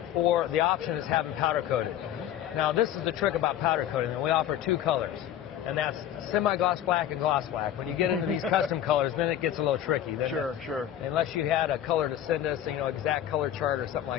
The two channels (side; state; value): right; quieter; 11.1 dB